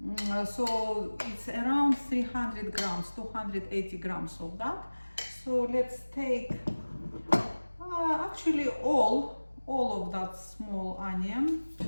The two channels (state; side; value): inverted; both; correlation -1.00